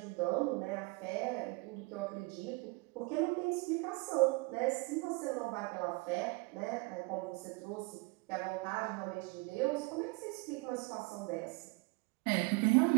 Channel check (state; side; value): quieter; left; 26.6 dB